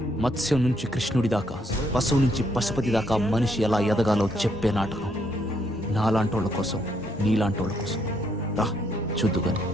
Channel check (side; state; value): both; normal; correlation 0.72